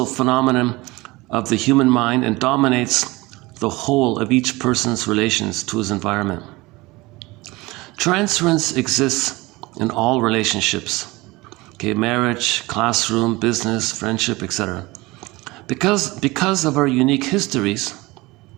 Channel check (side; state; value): left; quieter; 21.8 dB